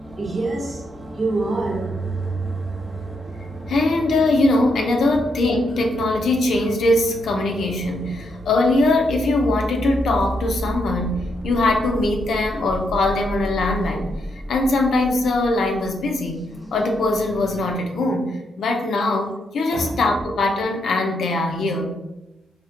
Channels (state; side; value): normal; both; correlation 0.79